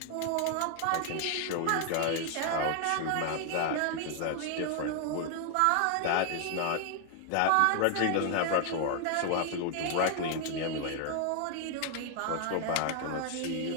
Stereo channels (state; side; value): different; both; correlation 0.00